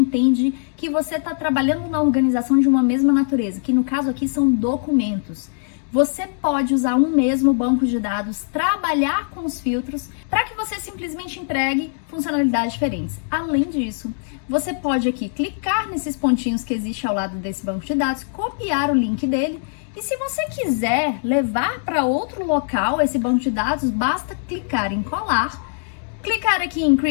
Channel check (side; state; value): right; silent; digital silence